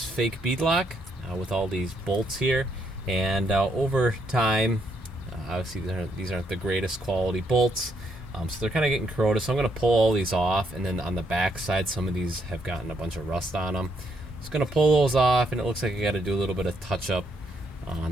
fake beadlock with all these bolts here, and over time, obviously these aren't the greatest quality bolts, so they're kind of getting corroded. So I'm gonna pull all these off, and then on the back side, some of these have gotten a bunch of rust on them. Just gonna pull those off, and it looks like I got to do a little bit of touch up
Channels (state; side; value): normal; both; correlation 0.74